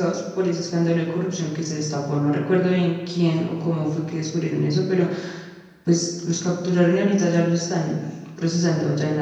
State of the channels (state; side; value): identical; both; correlation 1.00